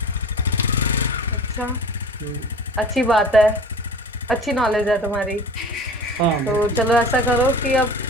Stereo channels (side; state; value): both; normal; correlation 0.40